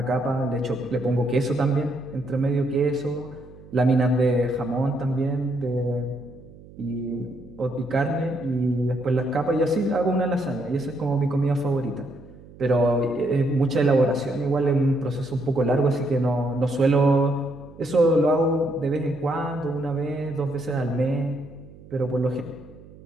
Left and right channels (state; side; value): noise; right; hum, 20 dB below the sound